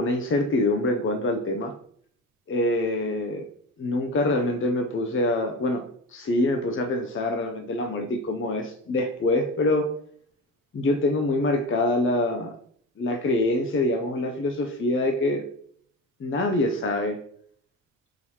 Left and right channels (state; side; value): normal; both; correlation 0.27